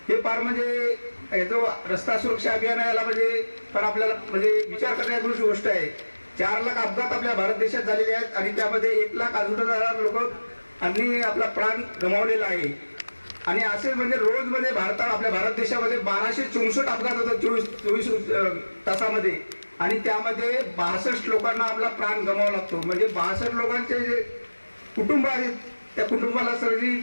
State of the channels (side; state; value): both; inverted; correlation -1.00